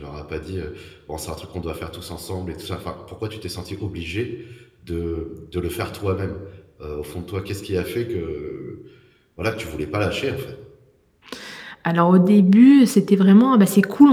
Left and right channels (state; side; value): identical; both; correlation 1.00